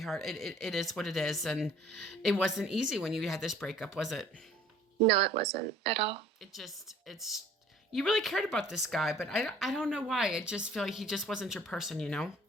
It is what it is, and it wasn't easy when you had this breakup, was it? No, it wasn't at all. It's you really cared about this guy, but I don't know why. I just feel like he just wasn't your person, you know?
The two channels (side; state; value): both; normal; correlation 0.53